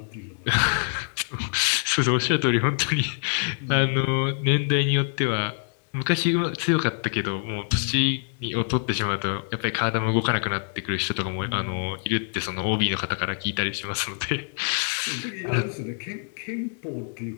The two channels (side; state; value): right; silent; 61 dB below the other